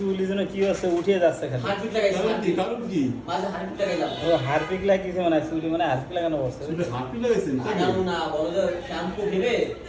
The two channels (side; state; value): both; identical; correlation 1.00